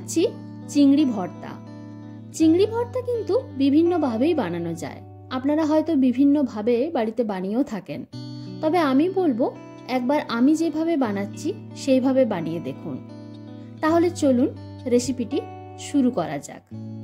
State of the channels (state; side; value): identical; both; correlation 1.00